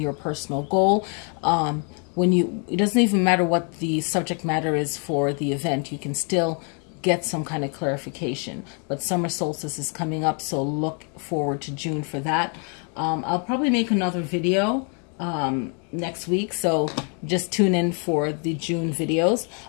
personal goal. It doesn't even matter what the subject matter is for the event, you can still get some kind of clarification. But summer solstice is coming up, so look forward to June for that. I'll probably make another video next week, so just tune in for the June videos.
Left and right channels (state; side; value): quieter; right; 38.8 dB